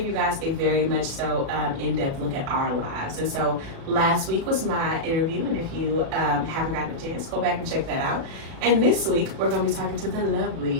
you guys a very much so in-depth look at our lives. And so last week was my interview, and if you haven't gotten a chance, go back and check that out. And this week we're going to be talking to the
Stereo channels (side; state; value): left; late; 37 ms